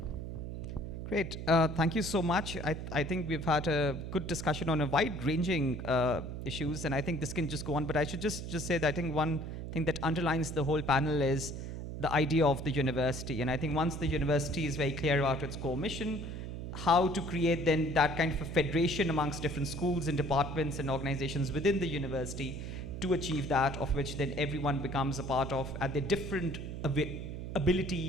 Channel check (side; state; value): right; noise; hum, 7 dB below the sound